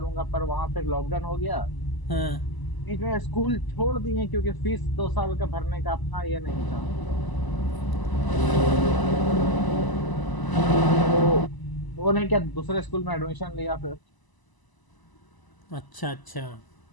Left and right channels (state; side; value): late; right; 1.0 ms